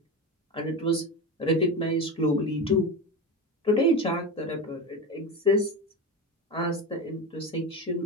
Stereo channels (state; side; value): normal; both; correlation 0.22